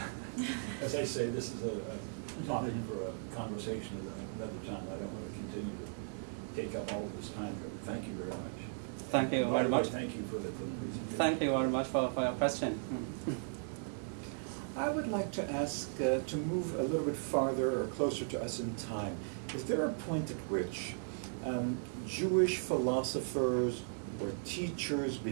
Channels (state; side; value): silent; left; 53 dB below the other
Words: As I say, this is a topic for a conversation at another time. I don't want to continue to take up all of this time. Thank you very much. Thank you very much. Thank you for the presentation. Thank you very much for your question. I would like to ask to move a little bit farther or closer to us in time. Is there a point at which Jewish philosophers or teachers